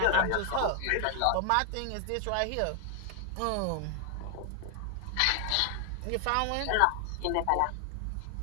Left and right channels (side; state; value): both; different; correlation 0.00